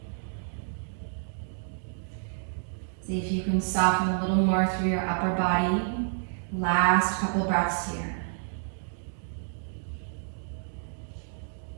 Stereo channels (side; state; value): left; silent; digital silence